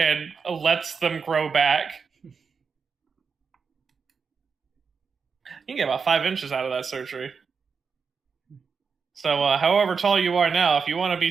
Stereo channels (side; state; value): left; quieter; 5.6 dB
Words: lets them grow back. You can get about 5 inches out of that surgery. So, however tall you are now, if you want to